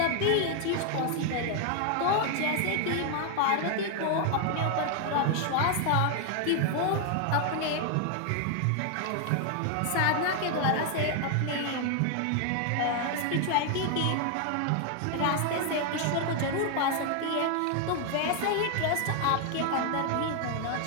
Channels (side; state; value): both; different; correlation 0.00